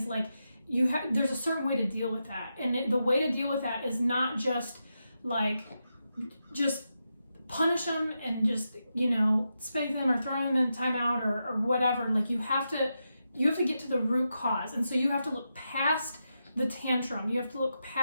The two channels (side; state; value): both; inverted; correlation -0.87